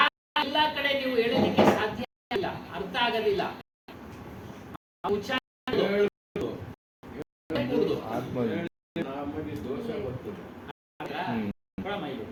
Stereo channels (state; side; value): identical; both; correlation 1.00